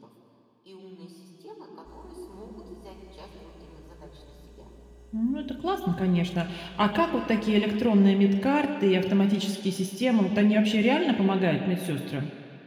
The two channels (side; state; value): both; identical; correlation 1.00